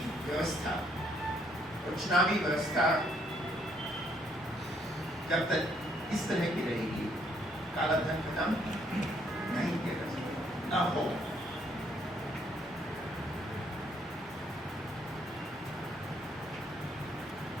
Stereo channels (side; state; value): both; normal; correlation 0.69